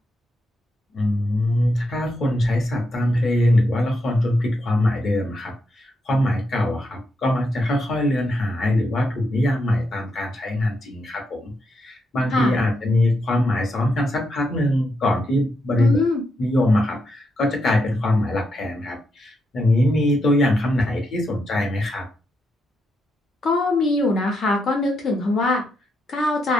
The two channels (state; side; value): normal; both; correlation 0.82